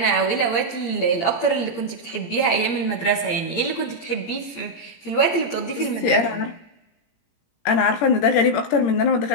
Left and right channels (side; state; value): right; late; 17 ms